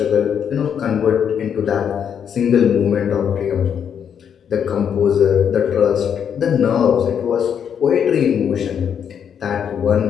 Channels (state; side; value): quieter; right; 8.1 dB